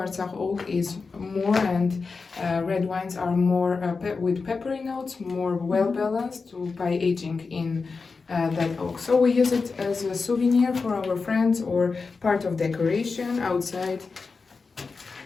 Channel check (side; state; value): right; quieter; 4.5 dB